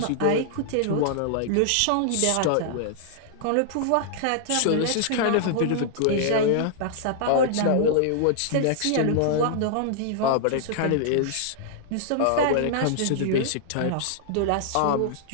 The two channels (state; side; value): different; both; correlation -0.01